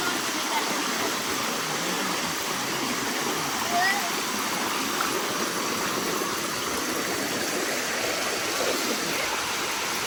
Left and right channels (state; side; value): identical; both; correlation 1.00